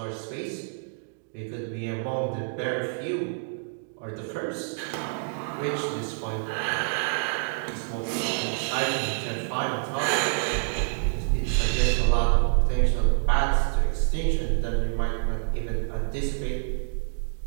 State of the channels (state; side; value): silent; left; digital silence